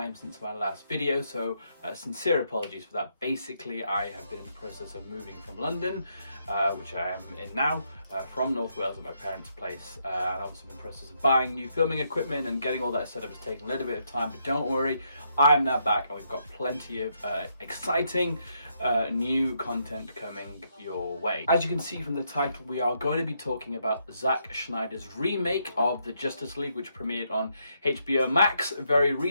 since my last video, so sincere apologies for that. Basically, I have been in the process of moving from London, which I am in now, from North Wales at my parents' place. And I've also been in the process of buying new filming equipment and getting all that set up. It's taken a little bit of time, but don't worry, I am now back and we've got plenty of exciting new content coming your way. As you can see from the title, we are going to be talking about Zack Snyder's remake of the Justice League, which premiered on HBO Max very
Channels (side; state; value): both; inverted; correlation -0.77